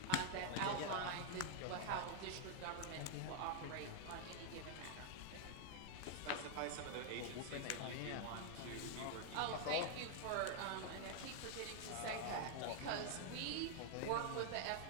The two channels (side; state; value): both; different; correlation 0.00